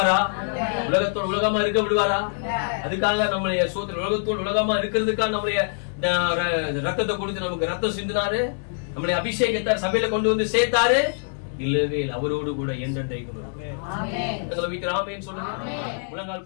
உலகத்தோடு உலகமா இருக்க விடுவாரா? அதுக்காக நம்மளைய சோதனை உலகத்தோடு உலகமா இருக்கிறதுக்காக நம்மளைய ரத்தத்தை கொடுத்து நமக்கு ரத்தம் சிந்தினாரு, நம்மளை அபிஷேகத்தார் சபையில கொண்டு வந்து சேர்த்தாரு. இல்லவே இல்லை, அவரோடு கூட என்றென்றைக்கும். எங்களை வீட்டு ஆமென் சொல்லுங்க.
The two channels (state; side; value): silent; right; digital silence